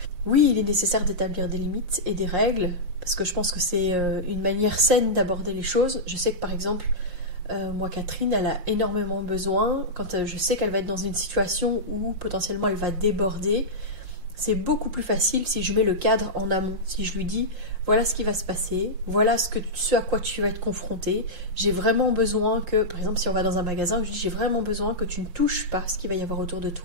Oui, il est nécessaire d'établir des limites et des règles, parce que je pense que c'est une manière saine d'aborder les choses. Je sais que par exemple, moi Catherine, elle a énormément besoin, quand je sais qu'elle va être dans une situation où potentiellement elle va déborder, c'est beaucoup plus facile si je mets le cadre en amont, si je lui dis voilà ce qui va se passer, voilà ce à quoi tu vas être confronté, j'ai vraiment besoin que, par exemple si on va dans un magasin, je dis j'ai vraiment besoin que tu ne touches pas ce qu'il va y avoir autour de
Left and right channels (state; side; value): late; left; 5.6 ms